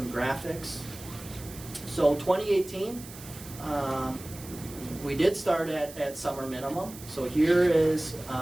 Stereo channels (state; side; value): noise; right; hiss, 16 dB below the sound